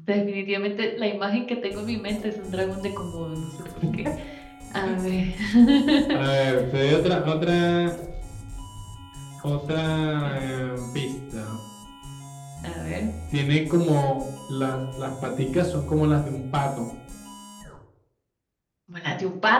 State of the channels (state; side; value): identical; both; correlation 1.00